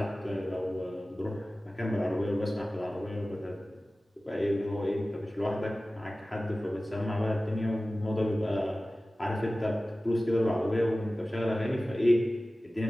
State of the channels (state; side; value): normal; both; correlation 0.97